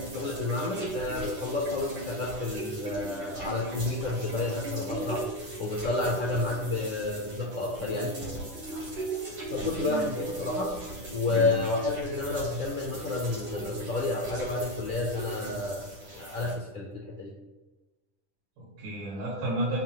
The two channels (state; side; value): late; left; 10 ms